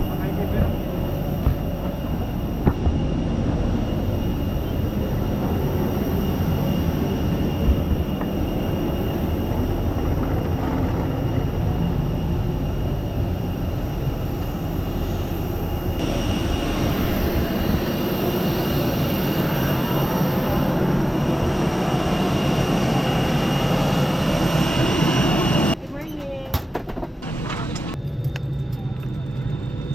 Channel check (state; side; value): normal; both; correlation 0.97